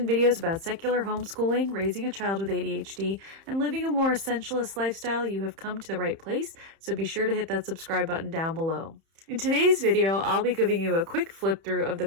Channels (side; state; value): left; late; 31 ms